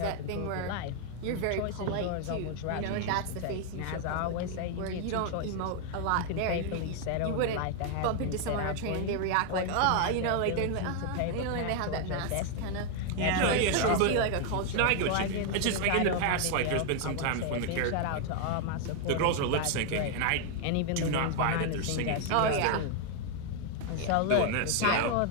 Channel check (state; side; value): different; both; correlation 0.00